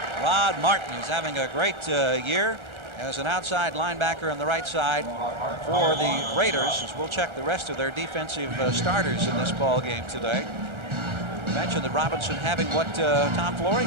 Rod Martin is having a great year as an outside linebacker on the right side for the Raiders, as we'll check the rest of their defensive starters in this ball game today. I mentioned that Robinson having what Tom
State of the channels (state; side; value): late; left; 1.4 ms